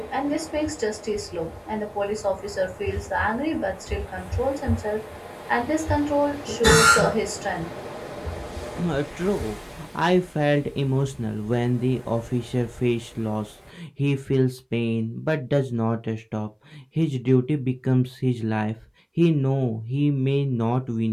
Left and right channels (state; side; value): identical; both; correlation 1.00